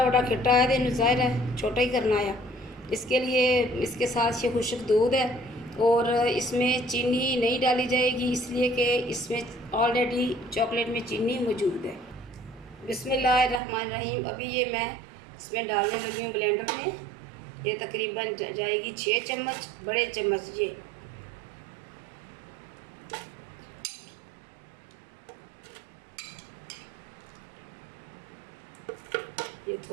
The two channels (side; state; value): left; drops out; at 13.6 s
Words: वड्डा खिट्टा है तो ज़ाहिर है छोटा ही करना है। इसके लिए इसके साथ ये खुश्क दूध है और इसमें चीनी नहीं डाली जाएगी, इसलिए कि इसमें ऑलरेडी चॉकलेट में चीनी मौजूद है। बिस्मिल्लाहिर्रहमानिर्रहीम। अभी ये मैं इसमें डालने लगी हूँ ब्लेंडर में। ये तकरीबन जाएगी 6 चम्मच, बड़े चम्मच ये